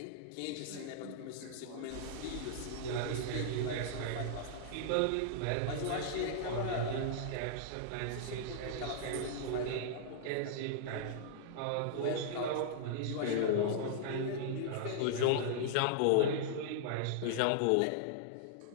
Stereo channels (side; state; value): both; different; correlation -0.01